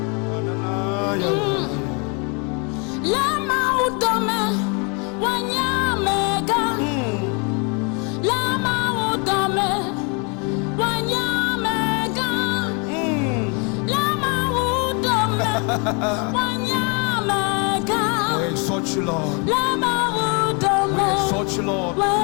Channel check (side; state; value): right; quieter; 33.9 dB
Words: Lama utome wanyamega. Lama utome wanyamega. Lama utome wanyamega. We exalt you, Lord. Lama utome We exalt you, Lord.